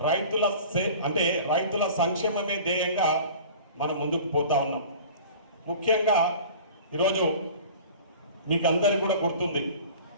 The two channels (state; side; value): inverted; both; correlation -0.42